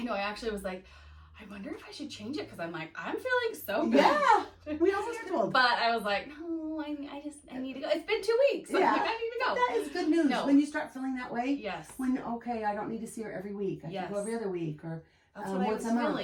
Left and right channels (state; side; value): identical; both; correlation 1.00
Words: know. I actually was like, I wonder if I should change it because I'm like, I'm feeling so good. Yeah. We almost told. But I was like, no, I need to go. It's been 2 weeks. Yeah. I'm like, I need to go. That is good news. No. When you start feeling that way. Yes. I don't need to see her every week. I can go every other week or That's what I once was a month.